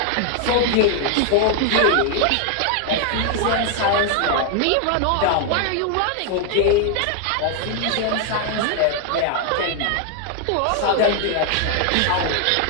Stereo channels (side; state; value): both; different; correlation 0.00